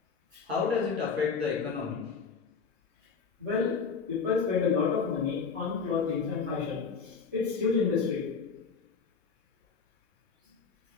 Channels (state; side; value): quieter; right; 5.5 dB